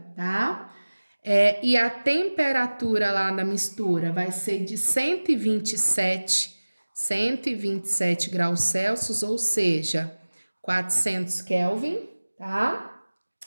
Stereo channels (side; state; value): both; inverted; correlation -1.00